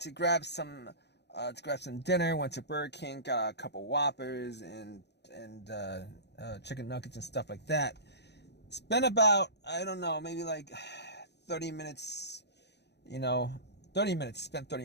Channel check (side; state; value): right; late; 0.49 ms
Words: grab some dinner. Went to Burger King, got a couple Whoppers and chicken nuggets and stuff like that. Spent about, I don't know, maybe like 30 minutes. 30 minutes. Spent